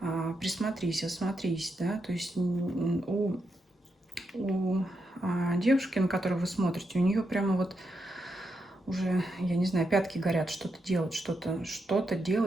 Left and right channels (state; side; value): normal; both; correlation 0.84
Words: присмотрись, осмотрись, да? То есть у девушки, на которую вы смотрите, у нее прямо вот уже, я не знаю, пятки горят, что-то делать, что-то